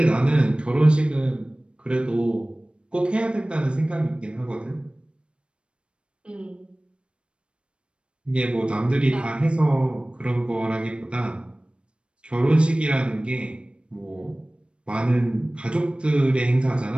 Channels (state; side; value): late; left; 0.057 ms